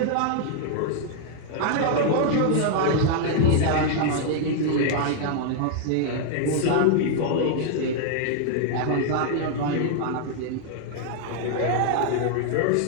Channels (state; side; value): different; both; correlation 0.00